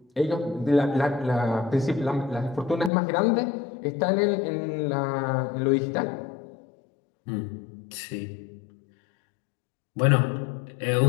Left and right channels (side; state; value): right; drops out; at 2.9 s